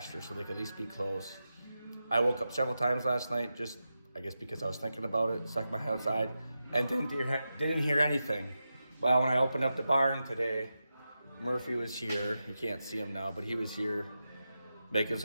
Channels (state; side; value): inverted; both; correlation -0.90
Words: so they could at least be close. I woke up several times last night, just I guess because I was thinking about it, stuck my head outside, and didn't hear anything. Well, when I opened up the barn today, Murphy was here. You can't see him now, but he was here making